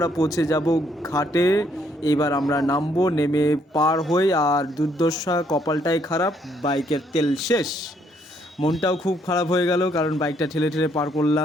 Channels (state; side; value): normal; both; correlation 0.70